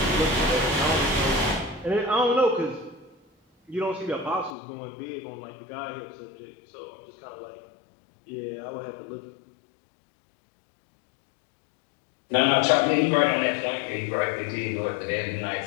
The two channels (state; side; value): drops out; right; at 4.5 s